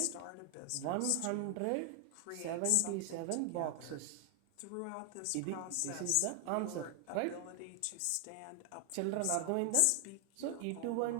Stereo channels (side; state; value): both; different; correlation 0.00